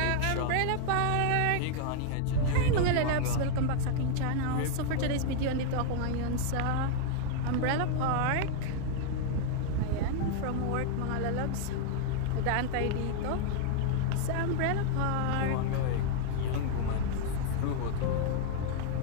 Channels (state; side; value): different; both; correlation 0.00